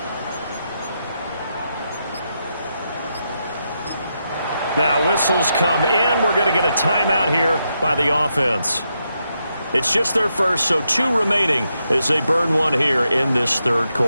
Now whistles come in. We're going to get a timeout here by the offense. It's just their first, so 2 remaining as they burn one here in this third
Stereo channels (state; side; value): inverted; both; correlation -0.83